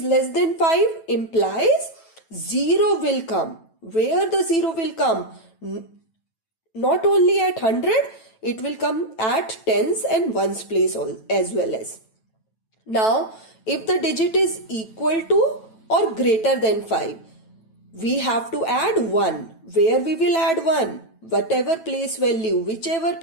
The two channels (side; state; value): right; late; 9.1 ms